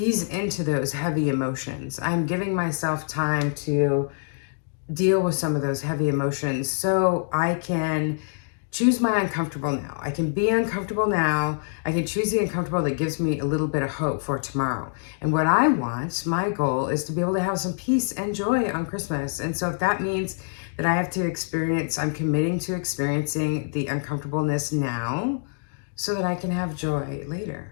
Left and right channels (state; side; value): silent; right; digital silence